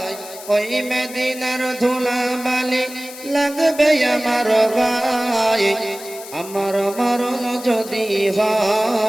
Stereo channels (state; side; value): noise; left; hiss, 15 dB below the sound